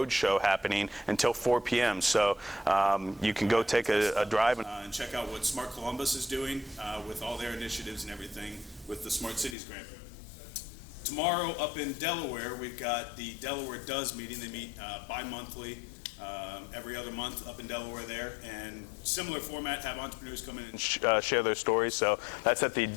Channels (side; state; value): right; drops out; at 9.6 s